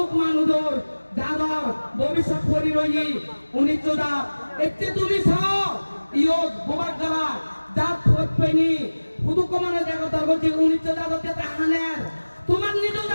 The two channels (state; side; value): inverted; both; correlation -1.00